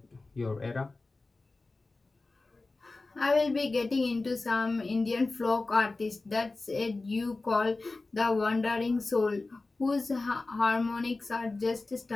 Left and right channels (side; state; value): right; quieter; 3.4 dB